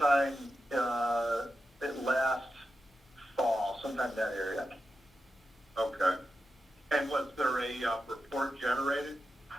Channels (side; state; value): both; normal; correlation 0.89